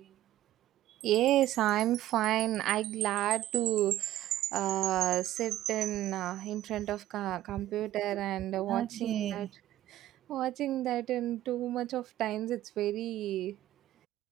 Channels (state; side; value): quieter; left; 13.9 dB